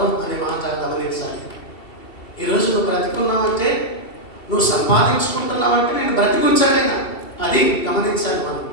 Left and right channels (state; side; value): late; right; 2.7 ms